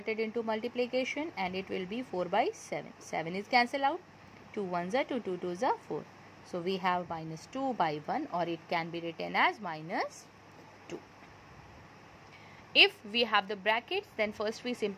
into multiplication and it will be 4 by 7. 7 is cancelled out. 2 ones are 2, 2 twos are 4. So we have minus 2 by 1, or it can be written as minus 2. If we have the brackets, then first we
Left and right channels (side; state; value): both; identical; correlation 1.00